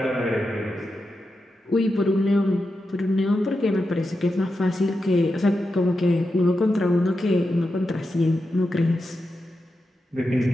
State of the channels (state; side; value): normal; both; correlation 0.88